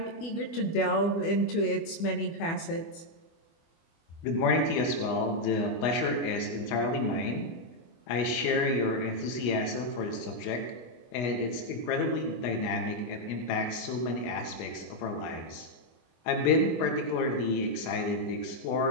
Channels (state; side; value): late; right; 24 ms